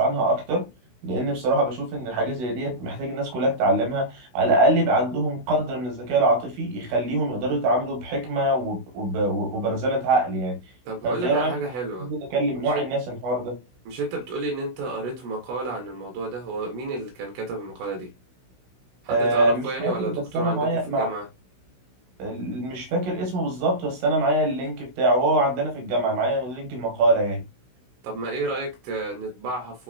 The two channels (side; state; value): left; late; 16 ms